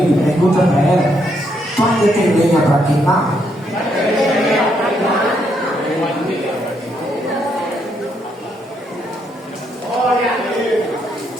pergunta para ela: tu ainda tem lenha para queimar?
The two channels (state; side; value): normal; both; correlation 0.75